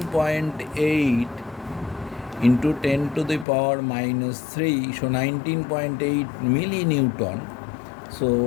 into 10 to the power minus 3. So 19.8 millinewton.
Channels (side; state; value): right; drops out; at 3.5 s